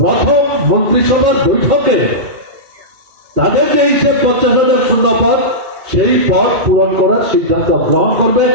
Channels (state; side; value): late; left; 2.3 ms